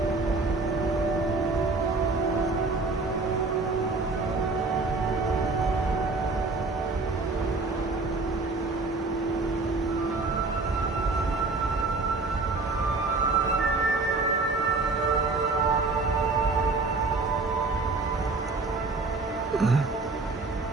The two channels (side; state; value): left; quieter; 3.7 dB